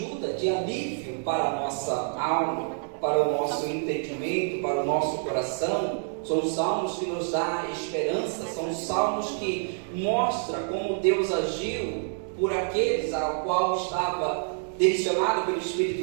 de alívio para a nossa alma, para o nosso entendimento, para o nosso coração. São salmos que nos dão esperança, são salmos que mostram como Deus agiu por aqueles ao qual estava direcionado pelo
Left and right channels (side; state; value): left; silent; 60 dB below the other